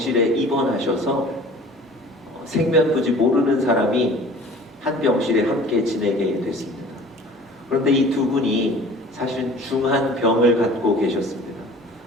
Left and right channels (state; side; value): normal; both; correlation 0.46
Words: 입원하셔서 생면부지 모르는 사람이 한 병실에 함께 지내게 됐습니다. 그런데 이 두 분이 사실은 중한 병을 갖고 계셨습니다.